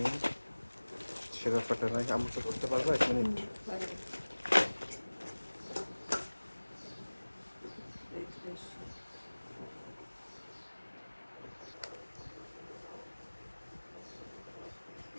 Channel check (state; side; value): inverted; both; correlation -1.00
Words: ছেঁড়া ফাটা নাই। আমাকে ধরতে পারবো 1 মিনিট?